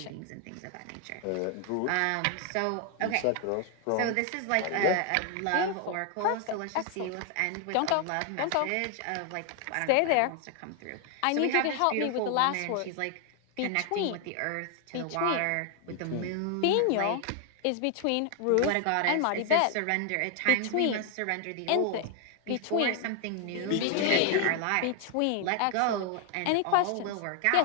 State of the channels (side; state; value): both; different; correlation 0.00